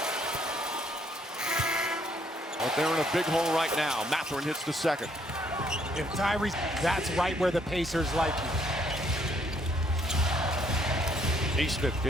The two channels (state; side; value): normal; both; correlation 0.67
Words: But they're in a big hole right now. Mathurin hits the second. If Tyrese, that's right where the Pacers like you. Neesmith